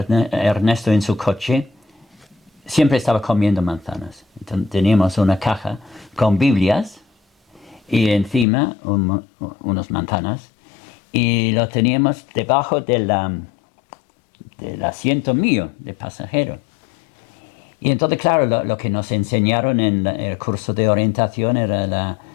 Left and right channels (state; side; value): drops out; right; at 8.5 s